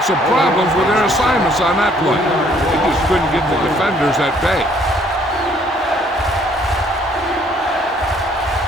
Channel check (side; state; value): both; normal; correlation 0.63